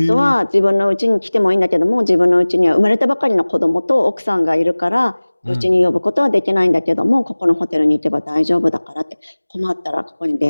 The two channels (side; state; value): both; inverted; correlation -1.00